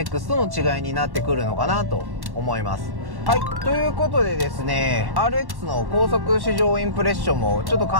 との違いになってくるのかなと思います。はい、ということでですね、RX の高速試乗インプレッションもちょっと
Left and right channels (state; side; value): late; left; 1.1 ms